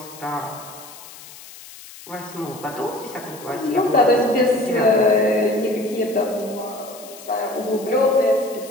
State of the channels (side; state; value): left; noise; hiss, 17 dB below the sound